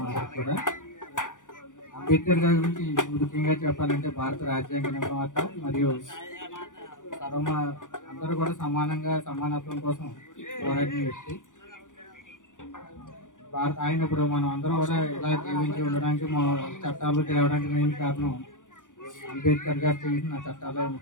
అందరికి కూడా. అంబేద్కర్ గారి గురించి ముఖ్యంగా చెప్పాలంటే భారత రాజ్యాంగ నిర్మాత మరియు అందరూ కూడా సమానత్వం కోసం పోరాడిన వ్యక్తి. ఆయన ఇప్పుడు మనం అందరం కూడా ఇలా జీవించి ఉండడానికి మా చట్టాలు తేవడానికి మెయిన్ కారణం అంబేద్కర్ గారు చేసిన చట్టాలే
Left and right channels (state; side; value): late; right; 0.87 ms